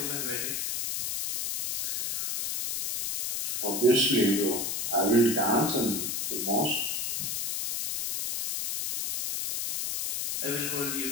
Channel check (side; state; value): left; noise; hiss, 1 dB below the sound